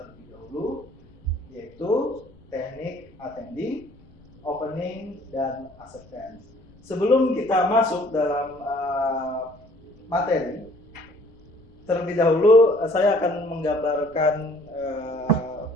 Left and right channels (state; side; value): noise; left; rumble, 26 dB below the sound